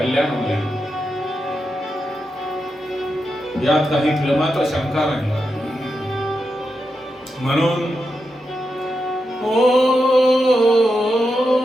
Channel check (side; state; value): both; normal; correlation 0.87